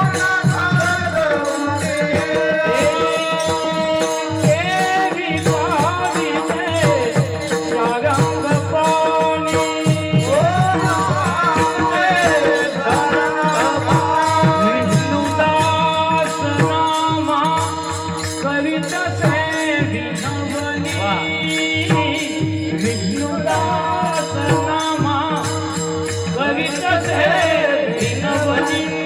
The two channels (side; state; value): both; identical; correlation 1.00